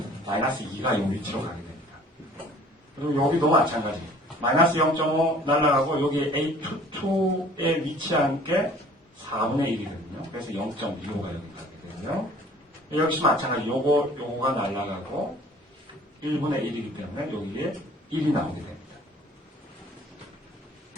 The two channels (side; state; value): both; normal; correlation 0.51